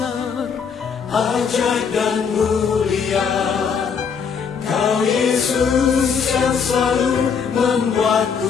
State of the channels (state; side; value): quieter; right; 6.3 dB